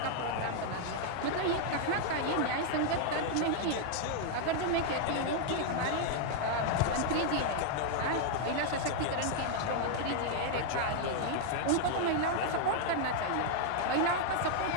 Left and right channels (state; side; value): different; both; correlation 0.00